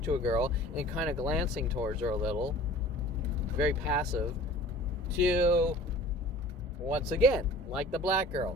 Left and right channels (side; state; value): both; normal; correlation 0.45